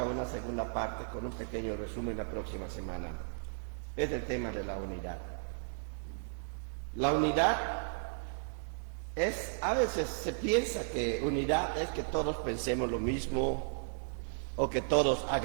una segunda parte con un pequeño resumen la próxima semana. Es el tema de la unidad. La unidad a veces se piensa que unidad es que todos pensemos lo mismo, o que todos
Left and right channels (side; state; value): left; silent; digital silence